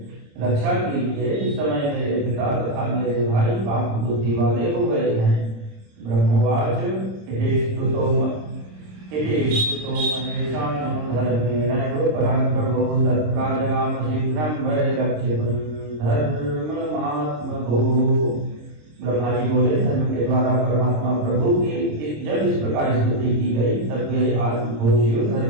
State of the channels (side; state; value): left; late; 26 ms